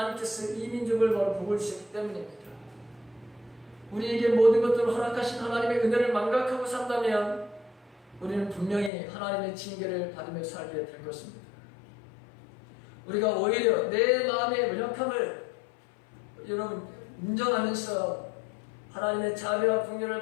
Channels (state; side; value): drops out; right; at 8.9 s